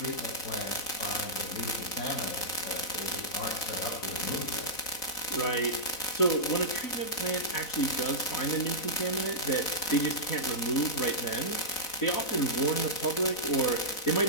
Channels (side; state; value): right; late; 4.0 ms